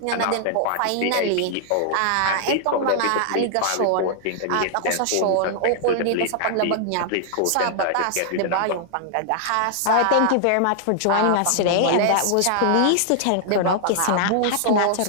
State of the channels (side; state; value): both; different; correlation -0.01